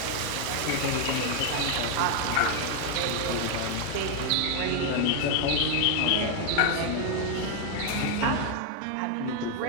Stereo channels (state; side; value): different; both; correlation 0.00